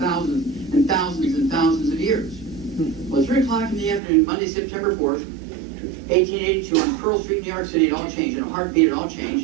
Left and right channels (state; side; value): drops out; left; at 4.0 s